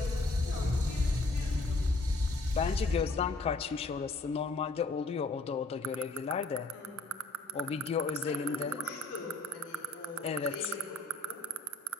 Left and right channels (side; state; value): right; quieter; 3.1 dB